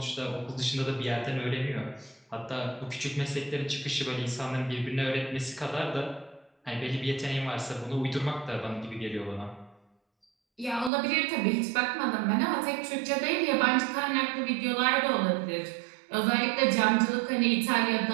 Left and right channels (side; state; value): left; drops out; at 10.9 s